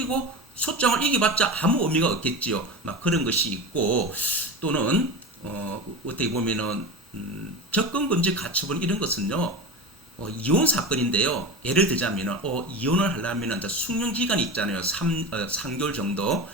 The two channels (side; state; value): both; normal; correlation 0.27